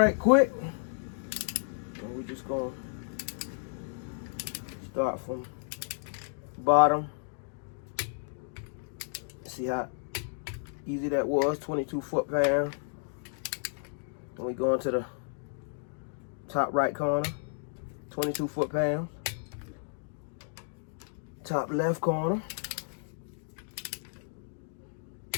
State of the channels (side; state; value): right; silent; digital silence